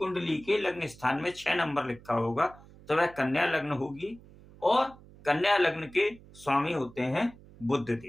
के लग्न स्थान में 6 नंबर लिखा होगा तो वह कन्या लग्न होगी। और कन्या लग्न के स्वामी होते हैं बुध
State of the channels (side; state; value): right; noise; hum, 22 dB below the sound